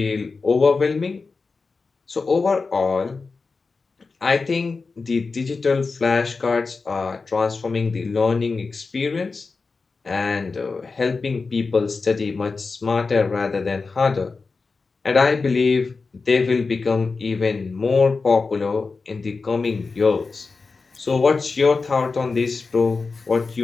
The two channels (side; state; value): right; quieter; 4.3 dB